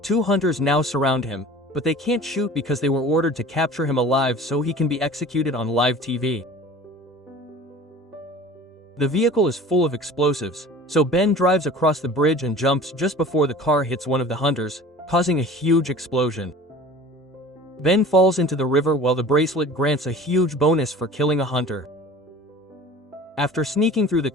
Two hunters now surround him, but they can't shoot because they were ordered to capture him alive so he can be executed on live TV. The vehicle is full of explosives, so Ben drives across the bridge and jumps just before the car hits one of the hunters, causing a huge explosion. Ben falls into the river while the bracelet grants a huge bonus for killing a hunter. After sneaking through the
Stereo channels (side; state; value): both; normal; correlation 0.42